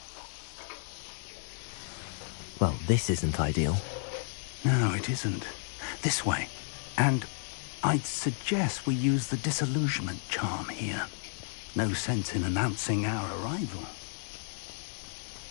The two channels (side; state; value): right; silent; digital silence